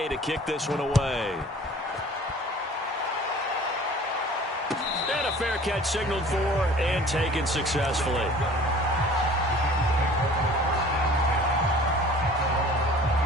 to kick this one away. And a fair catch signaled for and taken successfully.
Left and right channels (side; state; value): both; normal; correlation 0.47